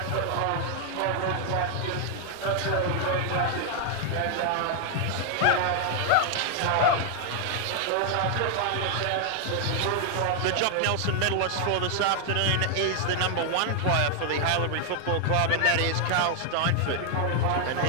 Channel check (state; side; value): different; both; correlation 0.00